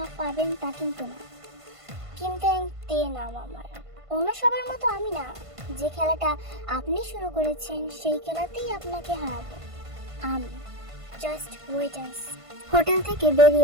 পাবেন তা কিন্তু না। কিন্তু তে নাম আমার, অন্য সবার মতো আমি না। যে খেলাটা আপনি শুরু করেছেন সেই খেলাতেই আপনাকে হারাবো আমি। Just wait and see. Hotel থেকে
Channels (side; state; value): left; late; 1.5 ms